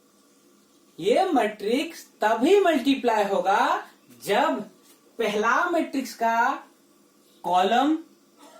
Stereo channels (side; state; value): both; identical; correlation 1.00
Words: ये मैट्रिक्स तभी मल्टीप्लाई होगा जब पहला मैट्रिक्स का कॉलम